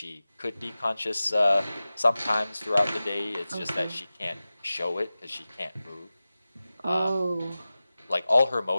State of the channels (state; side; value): inverted; both; correlation -0.96